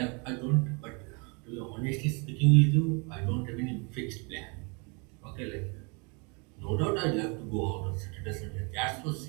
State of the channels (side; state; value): left; quieter; 32.5 dB